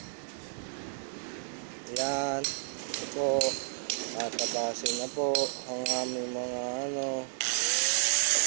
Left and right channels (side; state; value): left; silent; 57 dB below the other